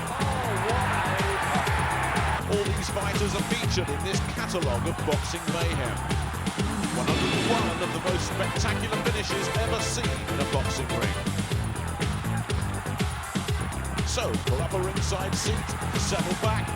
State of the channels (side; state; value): both; identical; correlation 1.00